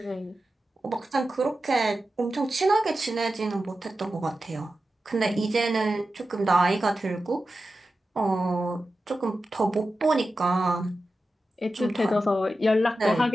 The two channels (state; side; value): normal; both; correlation 0.92